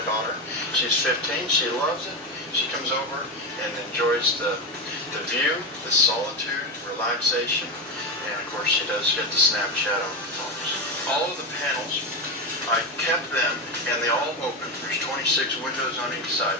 daughter. She's 15. She loves it. She comes over and enjoys the view, the solitude, relaxation, and of course she does get the Snapchat on the phones. All of the panels, I kept them and they all open. There's 26 windows on each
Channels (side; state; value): both; normal; correlation 0.15